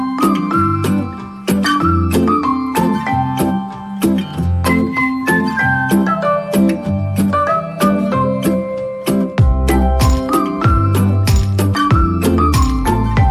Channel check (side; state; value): both; identical; correlation 1.00